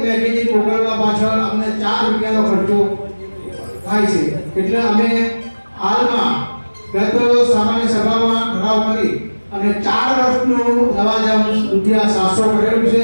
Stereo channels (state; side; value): inverted; both; correlation -1.00